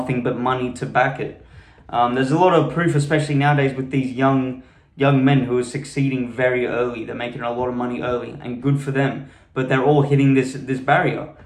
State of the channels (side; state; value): both; identical; correlation 1.00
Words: but money to back it. There's a lot of proof, especially nowadays with these young young men who are succeeding very early. They're making a lot of money early, and good for them. But they're all hitting this barrier,